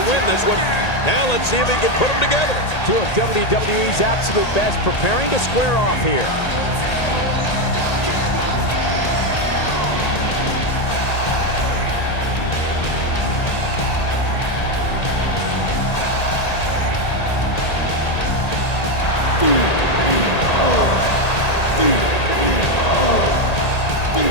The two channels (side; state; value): right; late; 1.8 ms